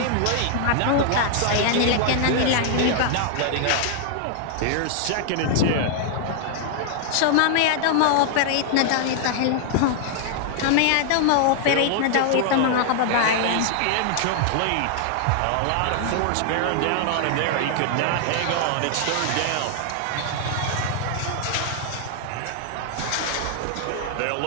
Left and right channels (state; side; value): different; both; correlation 0.00